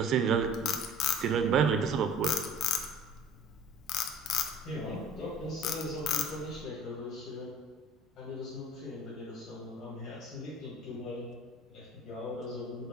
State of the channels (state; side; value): normal; both; correlation 0.45